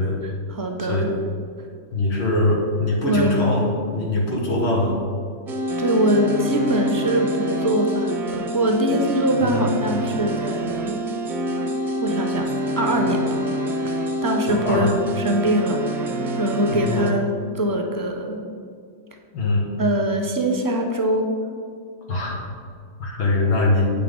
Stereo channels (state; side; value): late; right; 3.1 ms